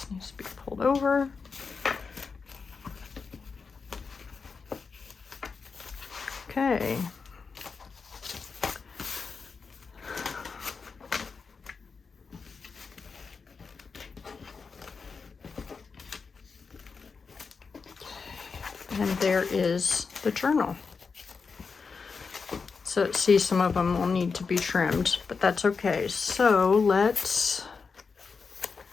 needs to be pulled over. Okay. And there is the journal. So see, some of them will need to be trimmed, but that's okay. So let's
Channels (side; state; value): right; quieter; 5.1 dB